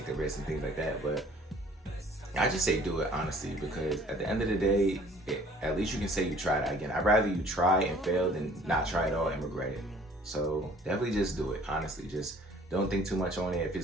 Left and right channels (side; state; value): both; normal; correlation 0.54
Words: the risk and things like that. But I just say do it honestly, because at the end of the day, at least you can say you tried it. Again, I'd rather you try and fail than not try at all and regret it. So definitely just do it. Honestly, just don't think too much on it. If